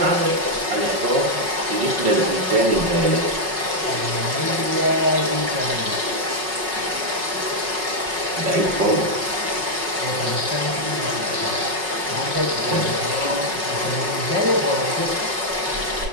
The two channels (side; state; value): left; late; 5.4 ms